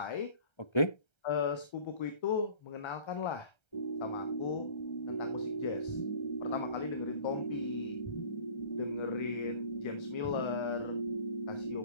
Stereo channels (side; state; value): right; late; 1.3 ms